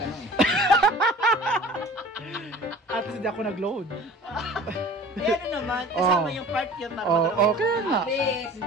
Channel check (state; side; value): normal; both; correlation 0.43